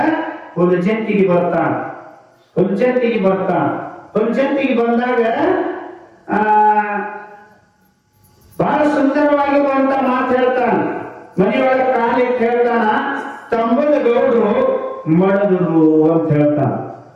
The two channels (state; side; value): identical; both; correlation 1.00